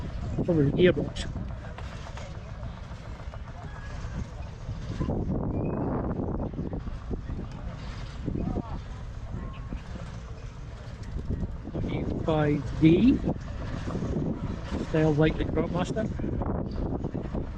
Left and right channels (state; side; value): identical; both; correlation 1.00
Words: Probably the gearbox. D style like the Cropmaster,